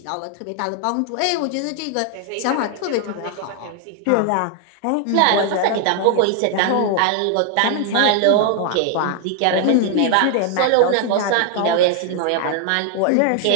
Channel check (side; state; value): both; different; correlation 0.00